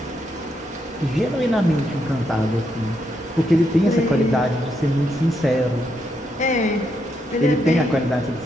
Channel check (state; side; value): normal; both; correlation 0.79